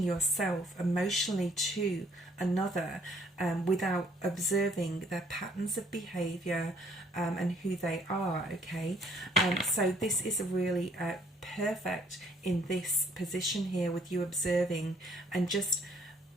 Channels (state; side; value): normal; both; correlation 0.64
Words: yourself emotionally to another without observing their patterns of behavior and who they are, okay? So this is really perfect in this position here, with you observing and just